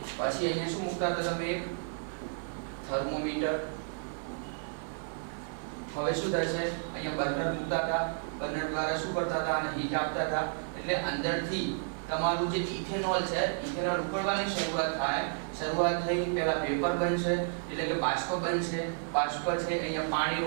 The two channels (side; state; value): left; silent; digital silence